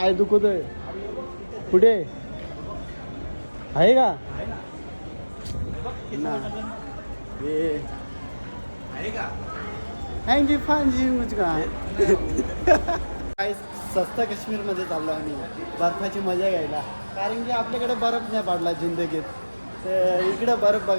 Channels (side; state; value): both; inverted; correlation -1.00